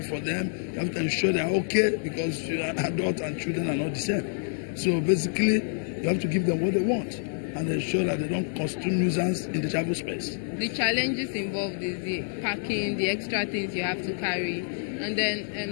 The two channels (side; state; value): right; silent; digital silence